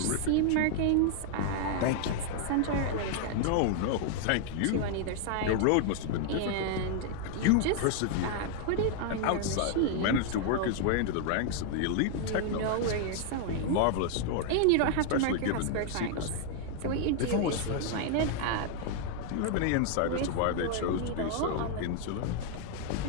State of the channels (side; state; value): both; different; correlation 0.00